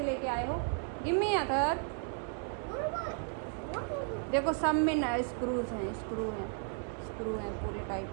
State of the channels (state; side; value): silent; left; 55 dB below the other